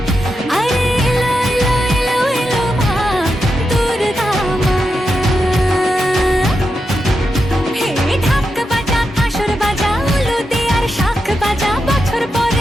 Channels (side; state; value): both; normal; correlation 0.87